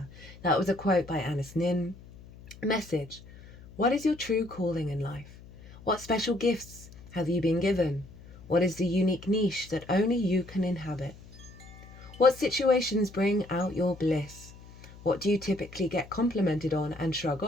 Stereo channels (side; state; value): left; noise; hum, 19 dB below the sound